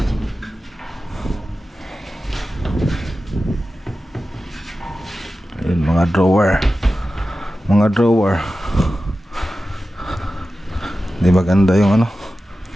Ayun, mga drawer. mga drawer. Di maganda yung ano.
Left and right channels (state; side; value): normal; both; correlation 0.94